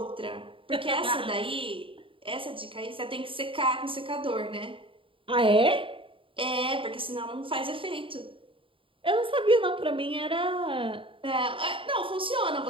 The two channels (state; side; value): late; left; 0.25 ms